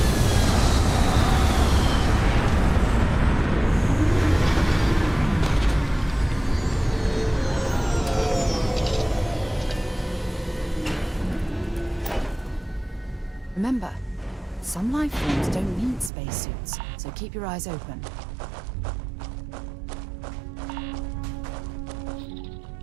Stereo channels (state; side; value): drops out; left; at 16.1 s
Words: Remember, some life forms don't need spacesuits, so keep your eyes open.